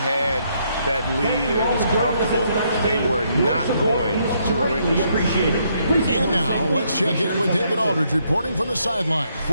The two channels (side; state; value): both; inverted; correlation -0.73